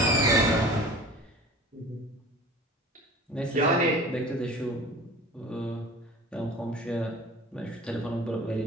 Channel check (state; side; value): normal; both; correlation 0.41